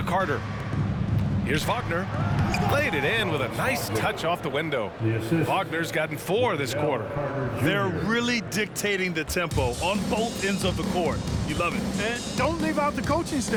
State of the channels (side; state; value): both; identical; correlation 1.00